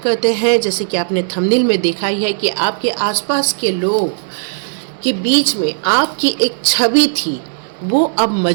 हैं। जैसे कि आपने थंबनेल में देखा ही है कि आपके आसपास के लोग के बीच में आपकी एक छवि थी, वो अब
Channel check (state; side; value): silent; left; digital silence